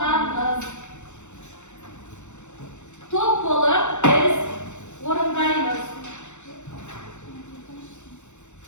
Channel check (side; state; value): right; late; 0.84 ms